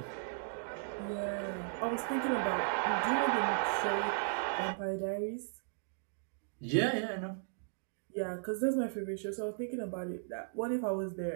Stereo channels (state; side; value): silent; left; digital silence